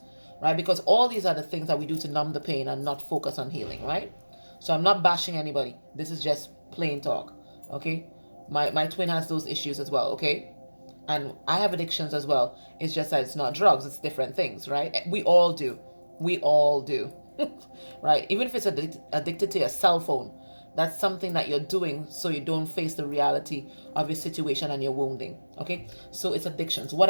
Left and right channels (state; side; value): inverted; both; correlation -1.00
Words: right? Because all these are the things that we do to numb the pain and not focus on healing, right? So I'm not bashing anybody. This is just plain talk, okay? My twin has those issues as well, okay? And I have addictions as well. It's just that it's not drugs, it's different things, right? We all do. We all do, right? Even if it's addicted to your cell phone, that's something that you're doing so you don't face the reality of your situation and your wounding, okay? So it's addictions,